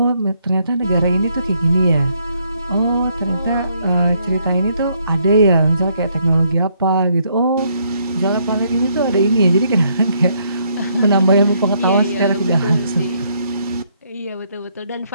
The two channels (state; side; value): inverted; both; correlation -0.71